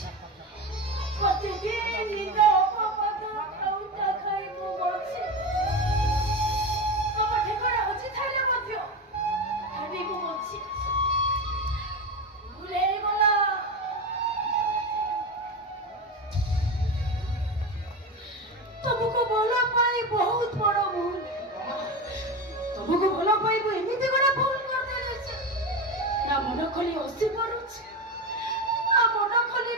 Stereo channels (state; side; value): normal; both; correlation 0.20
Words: ପ୍ରତିଦିନ ନିଦ ଅପବାଦ ଖାଉଟା ଖାଇ ମୁଁ ବଞ୍ଚେ ତମ ଠିକଣା ଅଛି ଥାଇଲେ ମଧ୍ୟ ଭାବି ମୁଁ ବଞ୍ଚି ଭୁଲ ହେଇଗଲା ତମକୁ ଭଲ ପାଇ ବହୁତ ବଡ଼ ଭୁଲ ତମକୁ ଭଲ ପାଇବୁ ଏମିତି ଗୋଟେ ଭୁଲ କରିଦେଇଛି ନା ମନ ଖୋଲି ହସି ପାରୁଛି ନା ମନ ଖୋଲି